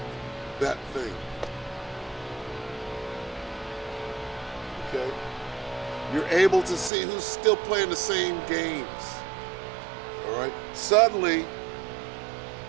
that thing. Okay? You're able to see who's still playing the same games. All right? Suddenly,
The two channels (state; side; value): drops out; left; at 6.9 s